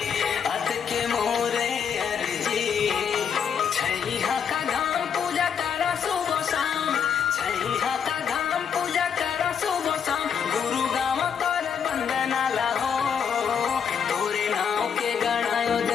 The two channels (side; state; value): right; quieter; 7.3 dB